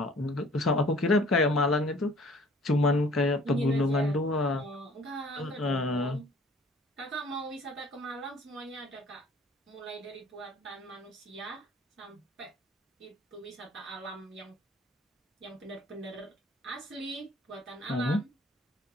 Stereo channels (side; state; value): both; normal; correlation 0.53